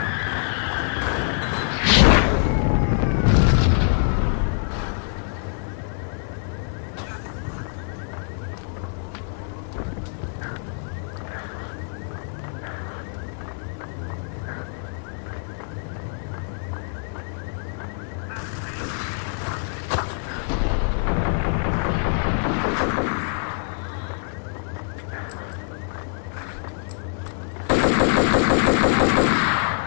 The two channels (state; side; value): silent; right; 62 dB below the other